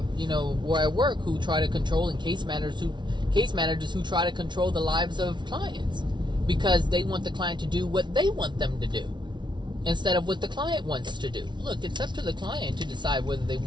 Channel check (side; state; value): left; late; 0.22 ms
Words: where I work who try to control, and case managers who try to control the lives of clients because they want the client to do what they want them to do instead of what the client wants to do. Look, it's up to the client to decide whether they